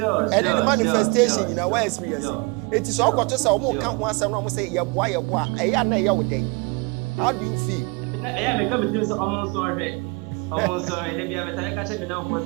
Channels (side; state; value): left; quieter; 29.3 dB